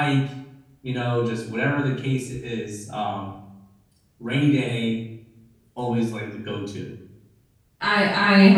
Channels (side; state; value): both; identical; correlation 1.00